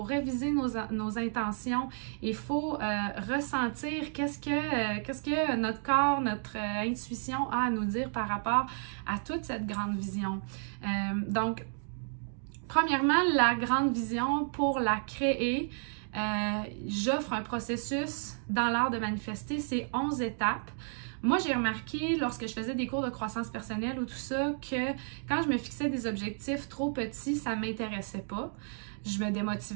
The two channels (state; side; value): silent; left; 56 dB below the other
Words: réviser nos intentions, il faut ressentir qu'est-ce que notre corps, notre intuition a à nous dire par rapport à toute cette grande vision. Donc, premièrement, la grande vision, pour la créer, j'offre un processus dans l'art de manifester, c'est 11 étapes. Moi, j'ai remarqué lorsque je faisais des cours de croissance personnelle ou tout ça, que quand je me fixais des objectifs trop petits, ça ne m'intéressait pas. Je me